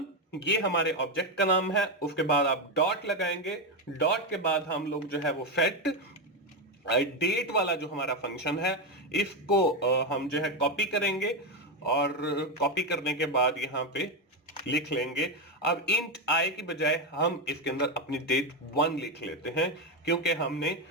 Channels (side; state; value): both; normal; correlation 0.10